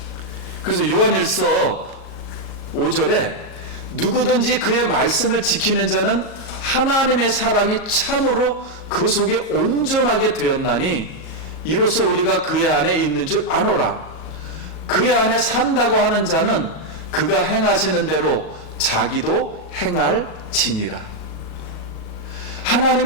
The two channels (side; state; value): right; late; 37 ms